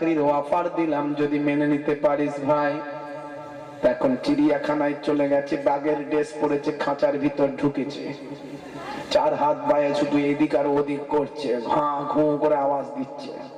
অফার দিলাম, যদি মেনে নিতে পারিস ভাই। এখন চিড়িয়াখানায় চলে গেছে, বাঘের ড্রেস পরেছে, খাঁচার ভিতর ঢুকেছে, চার হাত বায়ে শুধু এদিক আর ওদিক করছে, ঘা ঘু করে আওয়াজ দিচ্ছে।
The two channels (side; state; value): both; identical; correlation 1.00